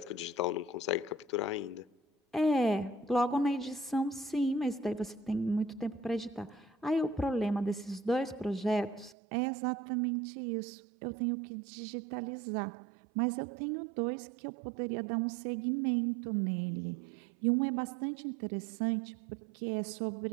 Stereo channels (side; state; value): left; drops out; at 9.2 s